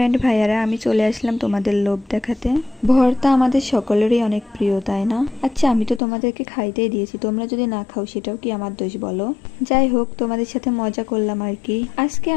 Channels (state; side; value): drops out; right; at 6.0 s